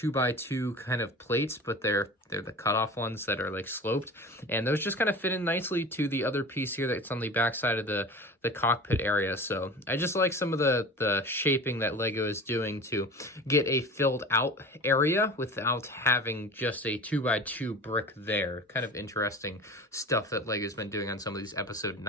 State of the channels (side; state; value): both; normal; correlation 0.36